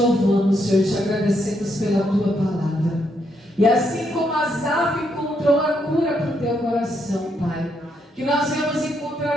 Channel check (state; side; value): normal; both; correlation 0.77